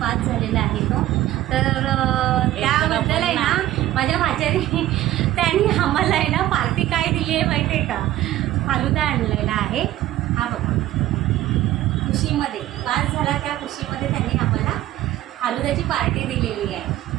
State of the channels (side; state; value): left; quieter; 14.3 dB